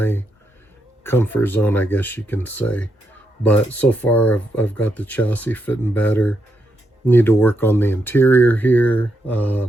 comfort zone, I guess you can say. But so far I've got the chassis fitting better. Need to work on the interior here.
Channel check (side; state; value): both; normal; correlation 0.82